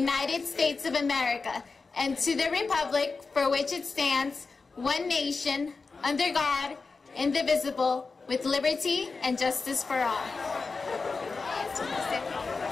States of America and to the republic for which it stands, one nation, under God, indivisible, with liberty and justice for all.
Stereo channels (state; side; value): quieter; right; 4.3 dB